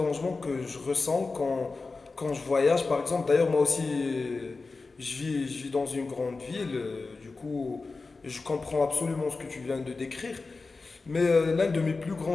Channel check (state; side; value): quieter; right; 3.9 dB